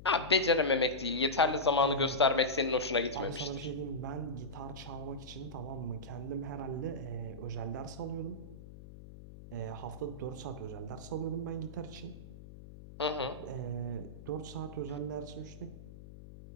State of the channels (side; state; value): left; noise; hum, 15 dB below the sound